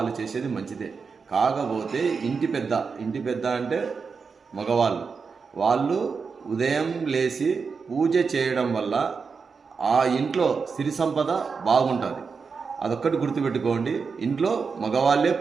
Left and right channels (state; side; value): quieter; left; 5.3 dB